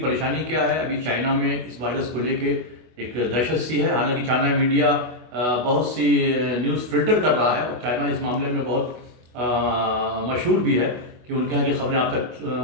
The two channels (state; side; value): late; left; 24 ms